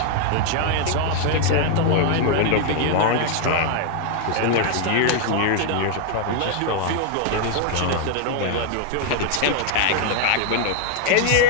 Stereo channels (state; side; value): different; both; correlation 0.00